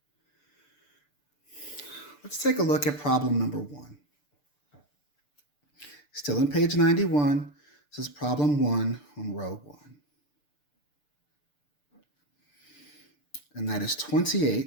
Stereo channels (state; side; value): late; right; 6.8 ms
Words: Let's take a look at problem number 1. Still on page 91. This is problem 1 on row 1. And that is